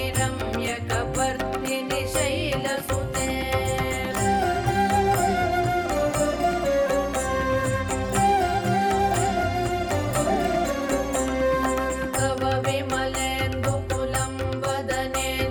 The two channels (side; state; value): both; identical; correlation 1.00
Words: रम्यकपर्दिनि शैलसुते तव विमलेन्दुकुलं